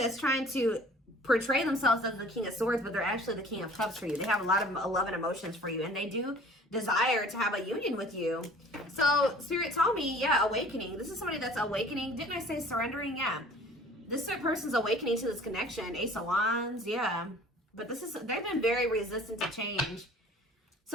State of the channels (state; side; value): normal; both; correlation 0.49